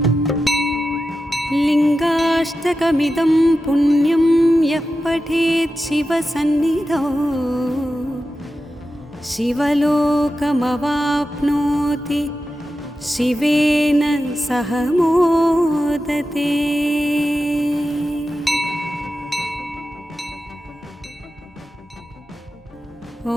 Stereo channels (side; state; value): both; normal; correlation 0.92